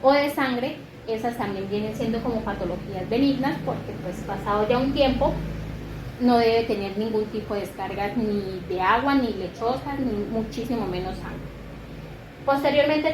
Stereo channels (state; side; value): identical; both; correlation 1.00